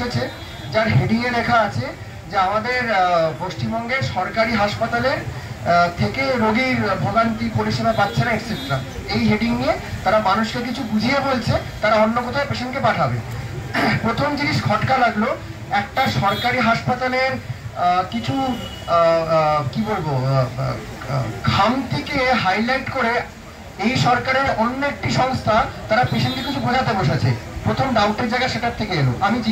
যার হেডিংয়ে লেখা আছে যে আমাদের পশ্চিমবঙ্গের সরকারি হাসপাতালের থেকে রোগীর ভোগান্তি পরিষেবা পাচ্ছে না এটসেট্রা। এই হেডিং নিয়ে তারা মানুষকে কিছু বুঝিয়ে বলছে তারা অন্য কোথাও পেশেন্টকে পাঠাবে। প্রথম জিনিস খটকা লাগলো, একটা সরকারি হাসপাতালের কিছু কি বলবো খামতিকে হাইলাইট করে এই সরকারের অন্য একটি সংস্থা তারা পেশেন্টকে কিছু বোঝাতে বসেছে। প্রথম ডাউটের জায়গা সেটার থেকে এলো।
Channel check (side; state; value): both; identical; correlation 1.00